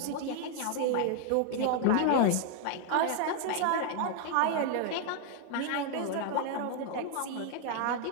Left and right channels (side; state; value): both; different; correlation 0.00